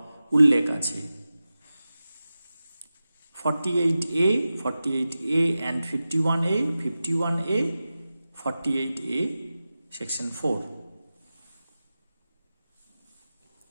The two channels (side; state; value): both; inverted; correlation -0.95